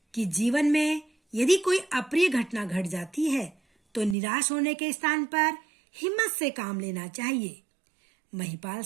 कि जीवन में यदि कोई अप्रिय घटना घट जाती है तो निराश होने के स्थान पर हिम्मत से काम लेना चाहिए। महिपाल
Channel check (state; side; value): drops out; left; at 4.2 s